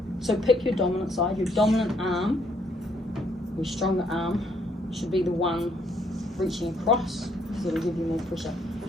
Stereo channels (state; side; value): normal; both; correlation 0.69